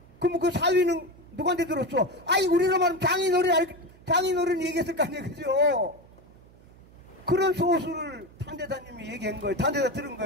그럼 그 사위는 누구한테 들었어? 아이 우리로 말하면 장인어른 얘기했을 거 아니에요. 그죠? 그런 소수를 탄대사님이 얘기한 거예요. 탄대사 들은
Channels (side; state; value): right; noise; hum, 25 dB below the sound